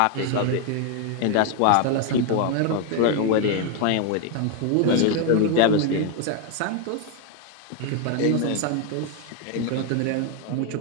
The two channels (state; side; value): different; both; correlation 0.01